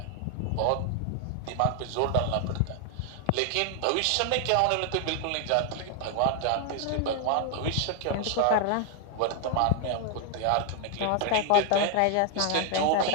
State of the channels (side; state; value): both; different; correlation 0.00